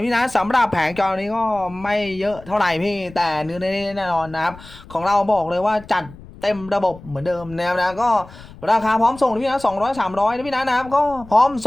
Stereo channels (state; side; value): noise; left; rumble, 19 dB below the sound